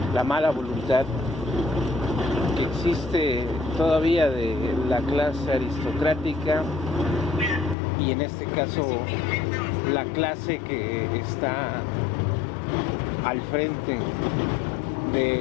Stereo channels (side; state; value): right; drops out; at 7.8 s